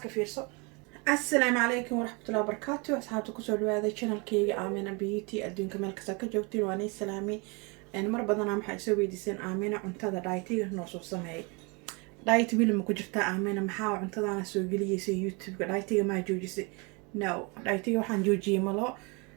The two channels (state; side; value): quieter; left; 30.1 dB